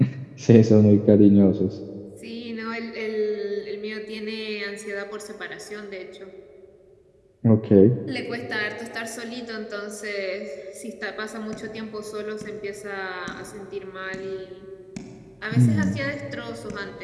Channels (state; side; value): identical; both; correlation 1.00